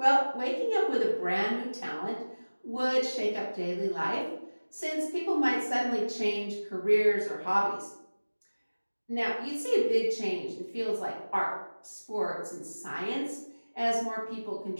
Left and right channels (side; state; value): both; inverted; correlation -1.00